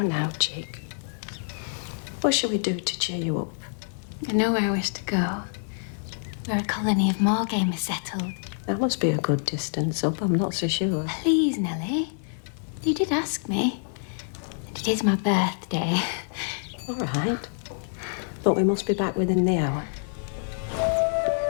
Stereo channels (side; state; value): right; silent; 60 dB below the other